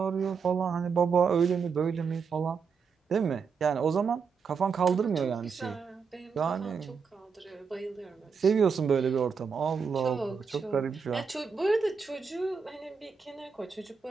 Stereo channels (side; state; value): left; quieter; 5.8 dB